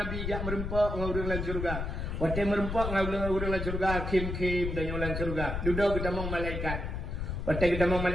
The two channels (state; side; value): noise; left; rumble, 4 dB below the sound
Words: jak merempok ngau dalam surga. Waktu merempok ngau dalam surga, kim dan dalam surga. Duduk kita mong malaikat. Waktu kita mong